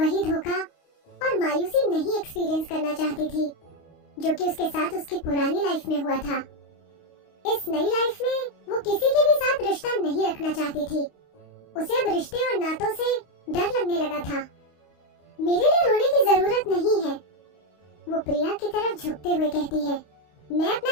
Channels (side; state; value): right; late; 29 ms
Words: धोखा और मायूसी नहीं एक्सपीरियंस करना चाहती थी जो कि उसके साथ उसकी पुरानी लाइफ में हुआ था। इस नई लाइफ में वो किसी के भी साथ रिश्ता नहीं रखना चाहती थी। उसे अब रिश्ते और नातों से डर लगने लगा था। मेरे लिए रोने की जरूरत नहीं है, वो प्रिया की तरफ झुकते हुए कहती है। मैं अपना